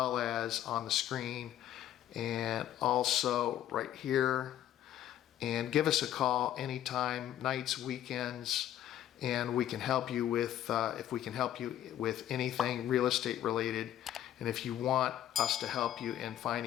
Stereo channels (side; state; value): right; quieter; 11.7 dB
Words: as on the screen, and also right here. And give us a call anytime, nights, weekends, and we can help you with, if we can help you with anything real estate related. And if you want us to help you in